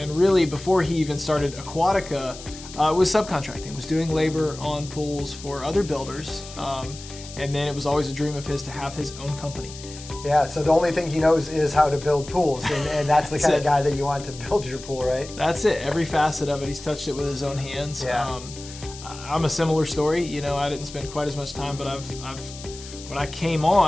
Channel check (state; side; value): noise; left; hiss, 15 dB below the sound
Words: really before he even started Aquatica, was subcontracting, was doing labor on pools for other builders, and then it was always a dream of his to have his own company. Yeah, so the only thing he knows is how to build pools, and that's the kind of guy that you want to build your pool, right? That's it. Every facet of it, he's touched it with his own hands. Yeah. I'm a similar story. I didn't spend quite as much time, but when I came